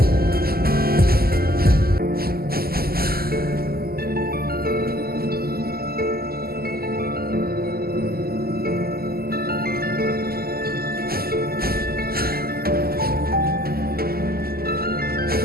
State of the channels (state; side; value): late; left; 0.45 ms